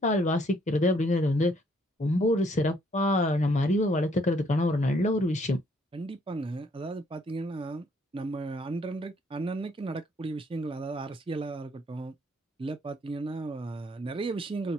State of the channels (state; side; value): normal; both; correlation 0.67